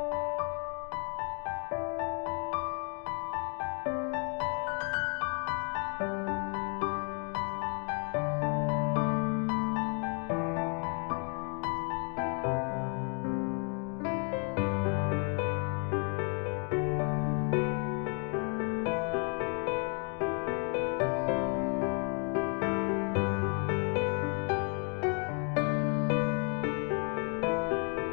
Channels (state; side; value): quieter; right; 39.5 dB